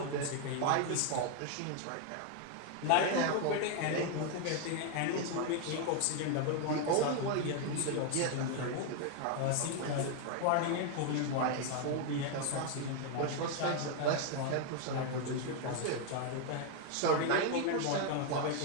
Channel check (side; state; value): both; different; correlation 0.01